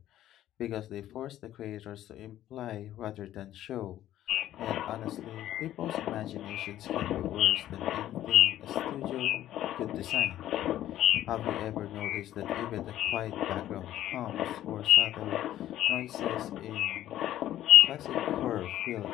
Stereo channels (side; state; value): right; quieter; 12.9 dB